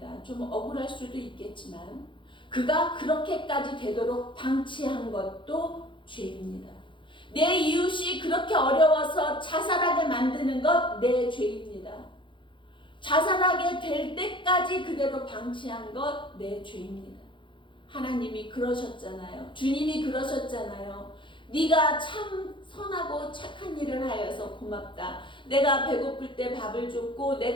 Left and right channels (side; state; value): right; late; 0.24 ms